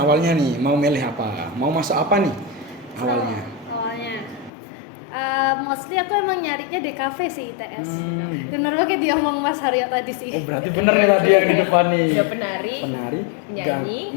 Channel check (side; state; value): right; drops out; at 4.5 s